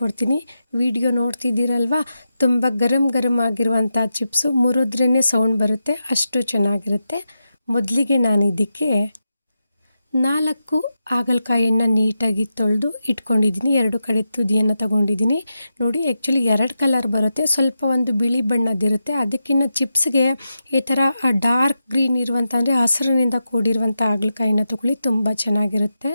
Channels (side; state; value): both; inverted; correlation -0.88